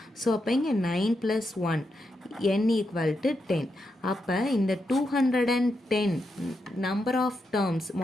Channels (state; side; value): normal; both; correlation 0.84